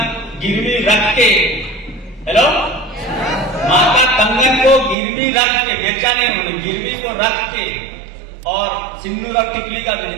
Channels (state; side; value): drops out; left; at 5.0 s